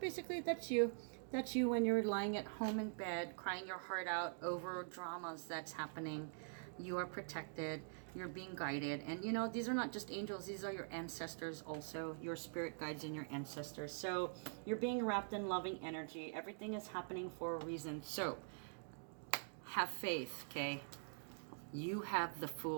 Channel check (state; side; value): silent; left; digital silence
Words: that's you. That's you when you're lying at home in bed, crying your heart out over dramas that's happening. You are protected. You're being guided. And you know, these are not just angels. These are your ancestors also. Your spirit guides and your ancestors. So you're being wrapped in loving energy. Everything is happening for a reason. So have faith, okay? You have the